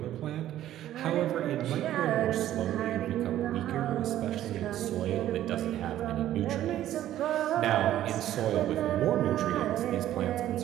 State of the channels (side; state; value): left; quieter; 12.7 dB